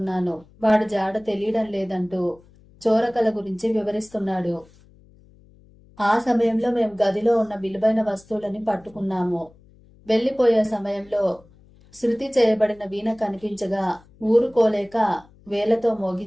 వాడు జాడ తెలియడం లేదంటూ చోరకల గురించి వివరిస్తున్నాడు. ఆ సమయంలో మేము గదిలో ఉన్న విలువైన వస్తువులని పట్టుకున్నాము. వెళ్లిపోయే సమయంలో శృతి చేయబడిన వీణ కనిపించగా ఊరుకోలేక వేలతో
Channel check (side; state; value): left; noise; hum, 27 dB below the sound